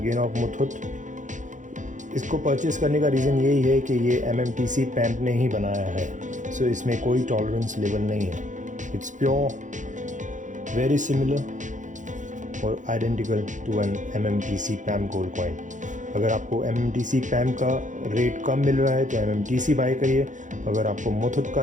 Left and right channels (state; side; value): late; left; 0.36 ms